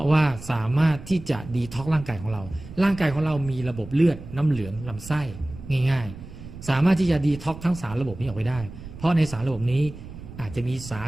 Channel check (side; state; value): right; noise; rumble, 14 dB below the sound